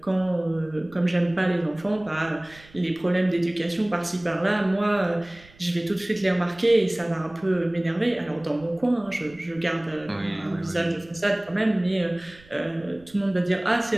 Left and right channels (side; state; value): right; noise; rumble, 25 dB below the sound